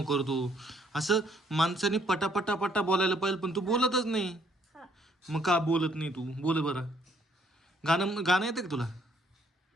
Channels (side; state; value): both; normal; correlation 0.66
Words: करतो. असं माणसाने पटापटा पटा बोलायला पाहिजे पण तू बोलतच नाही. मग का बोलत नाही तू? बोल बरं. गाणं गाणं येतं का तुला?